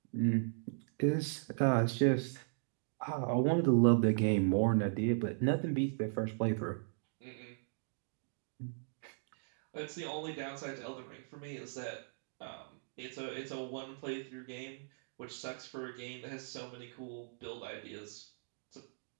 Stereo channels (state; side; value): silent; left; digital silence